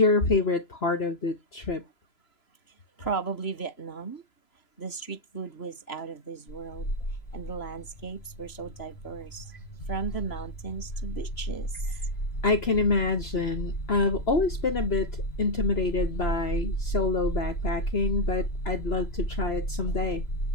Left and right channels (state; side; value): late; right; 3.0 ms